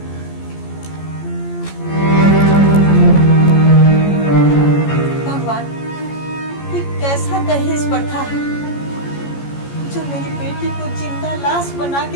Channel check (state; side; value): late; right; 14 ms